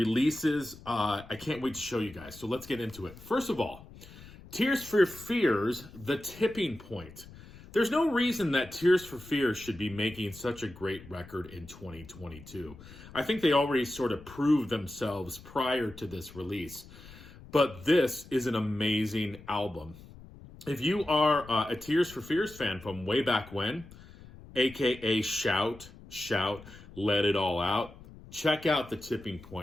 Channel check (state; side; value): noise; left; rumble, 19 dB below the sound